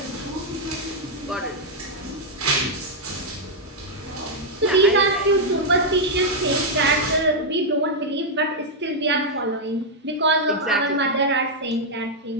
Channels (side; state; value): both; normal; correlation -0.02